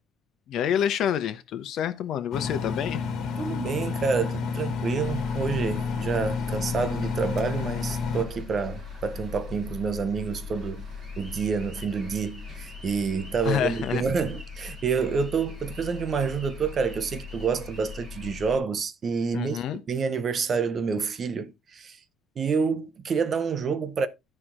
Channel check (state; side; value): normal; both; correlation 0.66